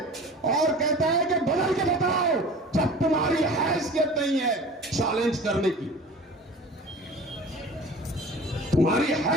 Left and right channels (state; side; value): normal; both; correlation 0.41